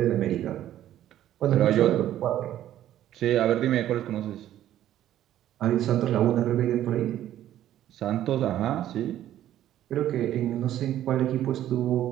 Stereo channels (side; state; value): left; quieter; 12.3 dB